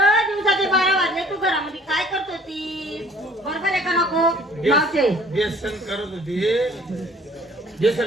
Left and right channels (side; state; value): both; normal; correlation 0.54